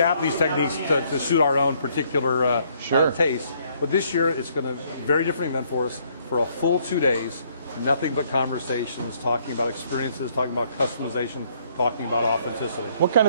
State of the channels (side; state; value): both; inverted; correlation -0.66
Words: these techniques to suit our own particular taste. But this year it's going to be a very different event for us for a full 2 days. Nothing but conversations, talking about experiences, talking about customization, talking about authenticity. What kind